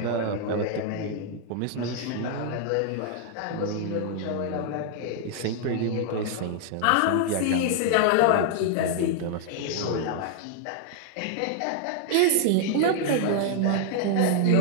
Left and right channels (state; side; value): different; both; correlation -0.01